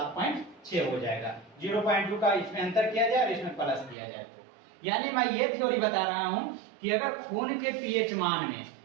हो जाएगा। 0.2 का इसमें अंतर किया जाए और इसमें प्लस किया जाए तो, यानी मैं ये थ्योरी बता रहा हूं कि अगर खून के पीएच मान में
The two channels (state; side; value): drops out; left; at 4.0 s